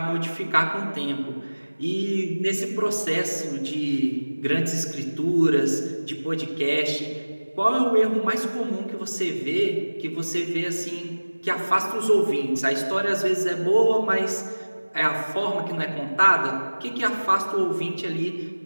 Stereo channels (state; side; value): inverted; both; correlation -1.00